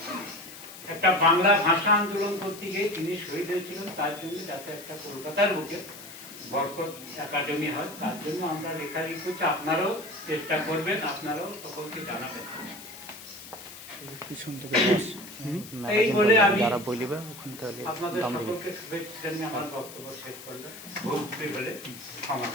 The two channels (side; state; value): left; noise; hiss, 15 dB below the sound